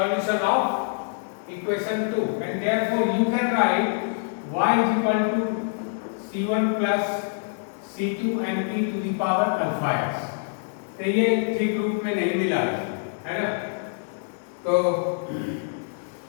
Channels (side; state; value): right; silent; digital silence